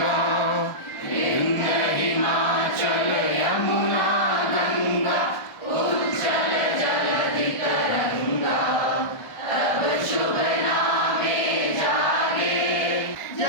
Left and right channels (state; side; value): late; right; 1.3 ms